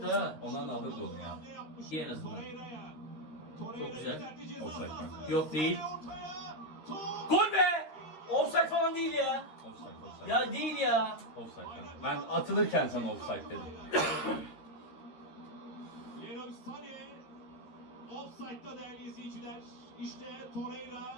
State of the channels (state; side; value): late; right; 13 ms